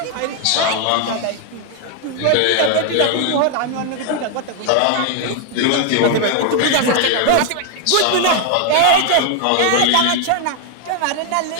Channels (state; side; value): different; both; correlation 0.00